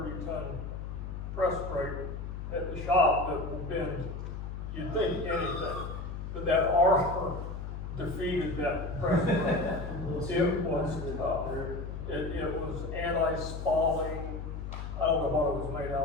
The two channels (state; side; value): noise; left; hum, 6 dB below the sound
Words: press brake at the shop that will bend, you'd think anything, but that armor defeated that press brake. It was tough. It was anti-spalling. I don't know what it was made